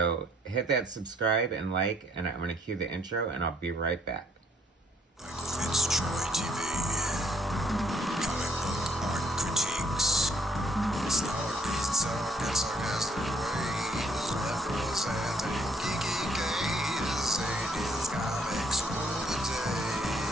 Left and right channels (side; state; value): both; normal; correlation 0.67